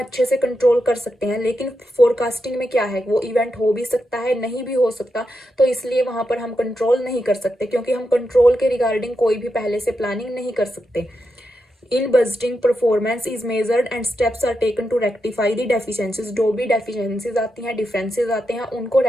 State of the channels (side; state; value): both; normal; correlation 0.86